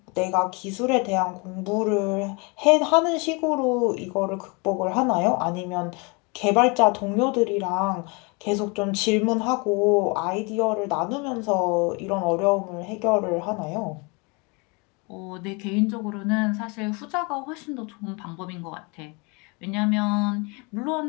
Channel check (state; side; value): quieter; right; 30.1 dB